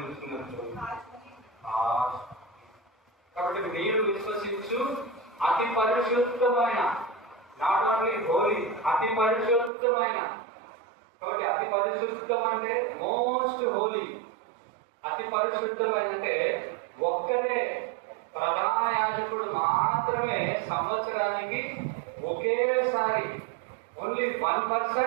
కాబట్టి మీరు విశ్వసించు అతి పరిశుద్ధమైన, నాట్ ఓన్లీ హోలీ, అతి పరిశుద్ధమైన. కాబట్టి అతి పరిశుద్ధం అంటే మోస్ట్ హోలీ. అతి పరిశుద్ధమైన అంటే ఒక్కరే ప్రధాన యాజకుడు మాత్రమే సంవత్సరానికి ఒకేసారి, only 1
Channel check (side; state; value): left; drops out; at 9.7 s